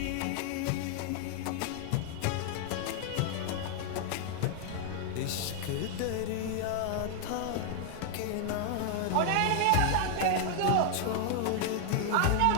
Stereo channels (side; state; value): both; different; correlation 0.00